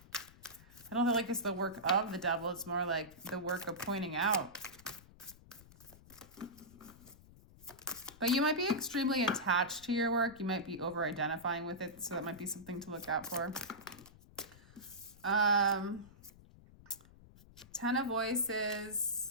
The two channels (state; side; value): noise; left; rumble, 22 dB below the sound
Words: I don't feel like it's the work of the devil. It's more like the work of pointing out. But you might be extremely attached to your work. You might be over-identifying with it, so that might be something to look out for. 10 of